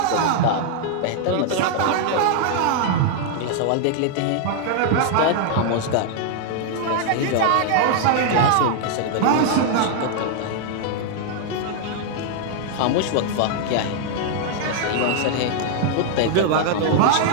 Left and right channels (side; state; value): both; different; correlation -0.01